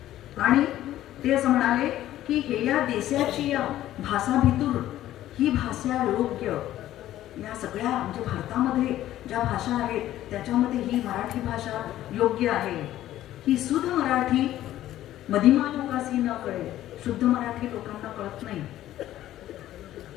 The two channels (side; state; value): right; quieter; 13.5 dB